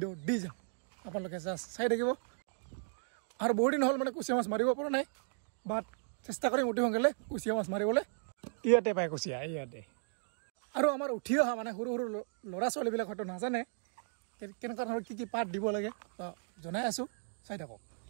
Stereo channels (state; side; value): silent; left; digital silence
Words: দি যাম, আপোনালোকে জাষ্ট চাই থাকিব। আৰু বহুত দিন হ'ল মানে কুচিয়া মাছ মাৰিব পৰা নাই, বাট চেষ্টা কৰিম অতি সোনকালে কুচিয়া মাছ মাৰিবলৈ। ইয়াতে পায় কুচিয়া, ইয়াতে। আৰু আমাৰ উঠি অহা মানে সৰু সৰু ল'ৰা ছোৱালীবিলাক হয়তো নাজানে কেনেকুৱা ধৰণৰ কি কি পাত দিব লাগে, জনাই আছোঁ, চাই থাকক।